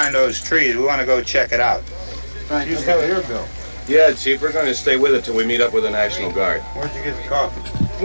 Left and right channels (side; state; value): both; inverted; correlation -1.00